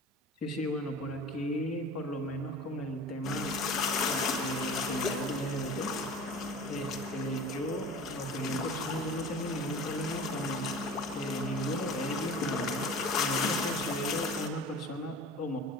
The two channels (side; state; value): both; normal; correlation 0.40